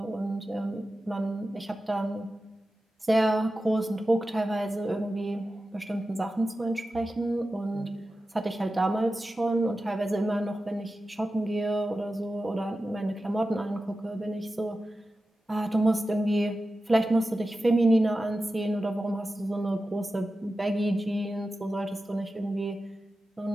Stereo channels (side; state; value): both; normal; correlation 0.93